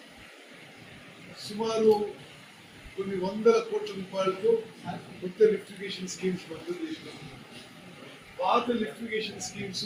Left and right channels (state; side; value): identical; both; correlation 1.00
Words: సుమారు కొన్ని వందల కోట్ల రూపాయలతో కొత్త లిఫ్టిగేషన్ స్కీమ్స్ మంజూరు చేసినాం. పాత లిఫ్టిగేషన్ స్కీమ్స్